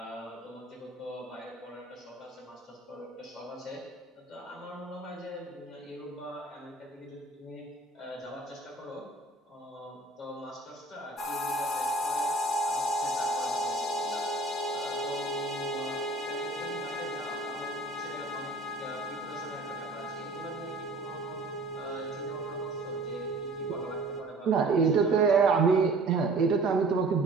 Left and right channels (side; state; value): left; quieter; 3.1 dB